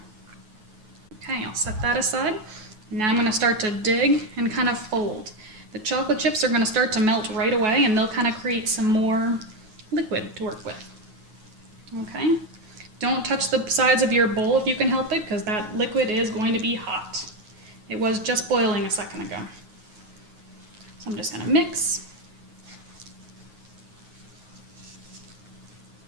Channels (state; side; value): late; left; 9.4 ms